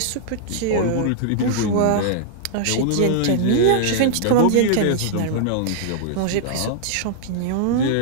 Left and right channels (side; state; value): both; different; correlation -0.01